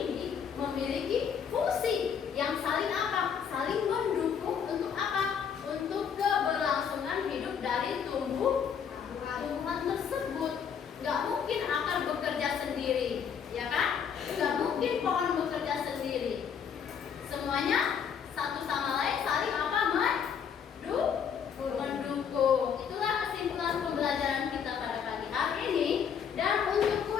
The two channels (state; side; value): quieter; right; 7.4 dB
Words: memiliki fungsi yang saling apa? Saling mendukung untuk apa? Untuk keberlangsungan hidup dari tumbuhan tersebut. Gak mungkin akar bekerja sendiri, ya kan? Gak mungkin pohon bekerja sendiri. Semuanya satu sama lain saling apa? Mendukung. Itulah kesimpulan pembelajaran kita pada pagi hari ini. Dan untuk